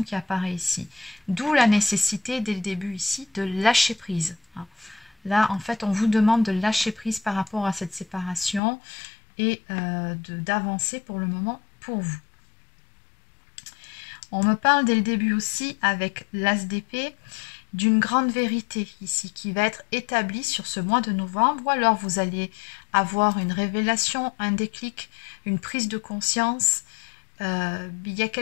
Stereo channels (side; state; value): right; drops out; at 8.6 s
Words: qui apparaît ici. D'où la nécessité, dès le début ici, de lâcher prise. Là, en fait, on vous demande de lâcher prise par rapport à cette séparation et d'avancer pour le moment pour vous. On me parle dès le début aussi, avec l'As d'épée, d'une grande vérité ici qui va être établie sur ce mois de novembre, ou alors vous allez avoir une révélation, un déclic, une prise de conscience. Il y a